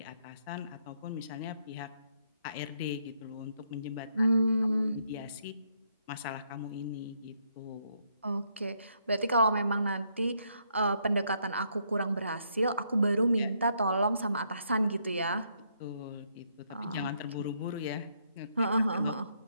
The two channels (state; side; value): inverted; both; correlation -0.73